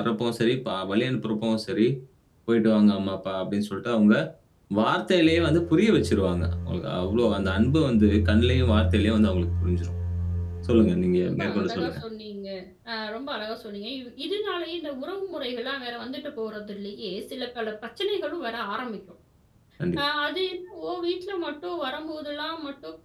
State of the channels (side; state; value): both; identical; correlation 1.00